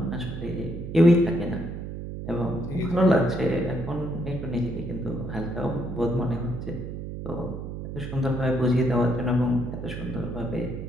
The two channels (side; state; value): right; noise; hum, 7 dB below the sound